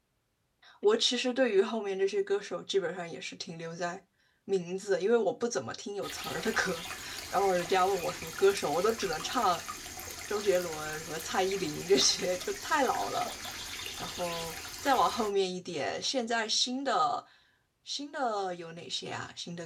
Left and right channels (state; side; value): identical; both; correlation 1.00